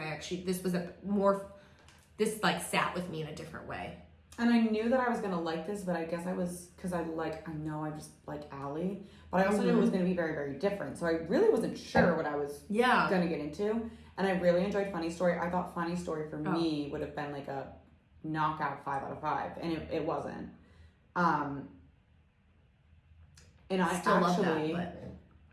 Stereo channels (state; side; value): identical; both; correlation 1.00